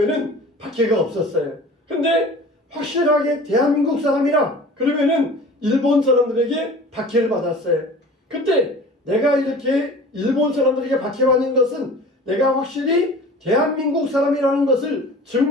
박해가 없었어요. 근데 확실하게 대한민국 사람이라 그러면은 일본 사람들에게 박해를 받았어요. 그때 내가 이렇게 일본 사람들에게 박해받는 것은 내가 확실히 대한민국 사람이라는 것을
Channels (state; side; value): normal; both; correlation 0.42